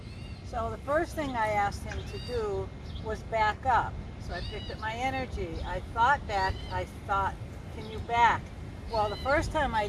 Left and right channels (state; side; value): identical; both; correlation 1.00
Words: So the first thing I asked him to do was back up. So I picked up my energy. I thought back. I thought, can you back? Well, the first time I